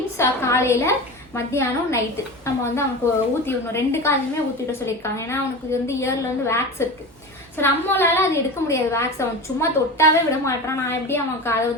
காலையில், மத்தியானம், நைட்டு நம்ம அவனுக்கு ஊற்றி விடணும். 2 காலையுமே ஊற்றிவிட சொல்லியிருக்காங்க. ஏன்னா அவனுக்கு இயர்ல வேக்ஸ் இருக்கு. ஸோ நம்மளால அது எடுக்க முடியாது வேக்ஸ். அவன் சும்மா தொட்டாவே விட மாட்டான். நான் எப்படி அவன்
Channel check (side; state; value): both; normal; correlation 0.29